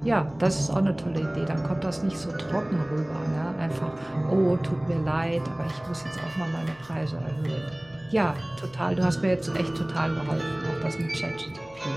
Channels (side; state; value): left; noise; hum, 24 dB below the sound